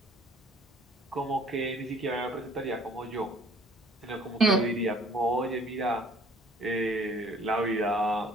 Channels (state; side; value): normal; both; correlation 0.55